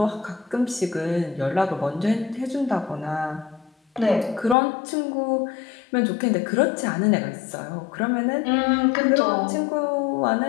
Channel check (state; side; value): drops out; right; at 4.5 s